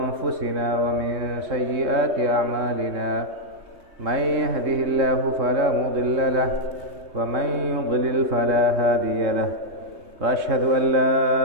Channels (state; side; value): late; left; 3.2 ms